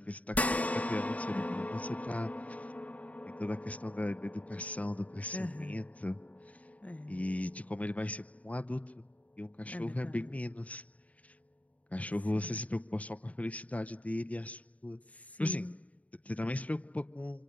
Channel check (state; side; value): late; right; 0.069 ms